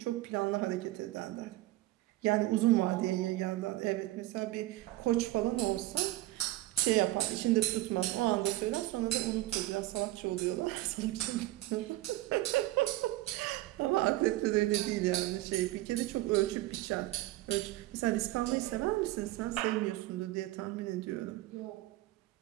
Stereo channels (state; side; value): quieter; left; 17.5 dB